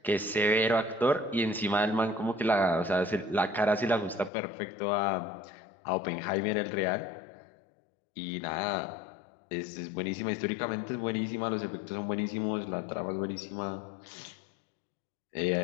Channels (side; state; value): right; drops out; at 4.3 s